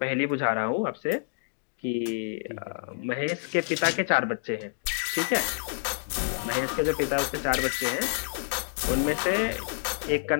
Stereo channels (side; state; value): right; silent; digital silence